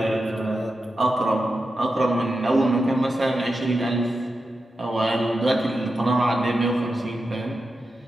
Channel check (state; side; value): normal; both; correlation 0.90